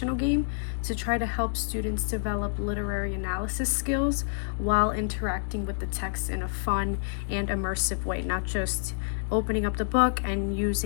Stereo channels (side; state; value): right; silent; digital silence